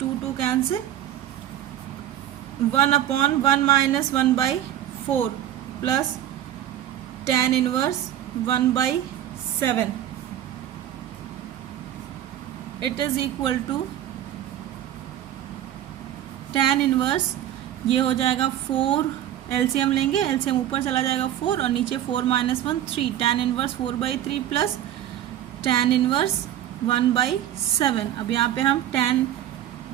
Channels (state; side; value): quieter; left; 11.7 dB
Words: 2 cancel, 1 upon 1 minus 1/4 plus tan inverse 1/7 it is equal to tan inverse, ये हो जाएगा 4, LCM लेंगे, LCM ऊपर चला जाएगा 4 और नीचे 4 - 1 3, tan inverse 4/3 plus tan inverse 1/7। अब यहाँ पे हम tan